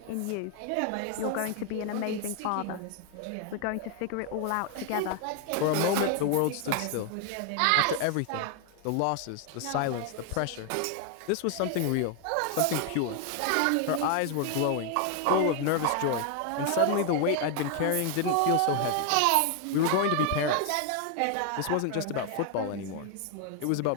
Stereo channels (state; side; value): different; both; correlation 0.00